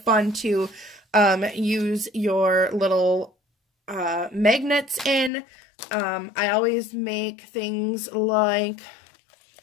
to use your little magnets in. I always make things like,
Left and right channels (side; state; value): right; drops out; at 5.3 s